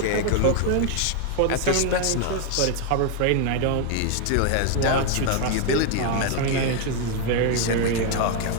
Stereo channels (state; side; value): different; both; correlation 0.00